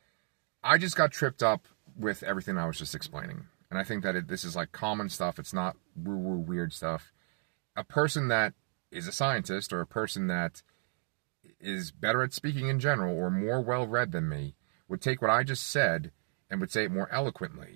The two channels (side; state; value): left; silent; 56 dB below the other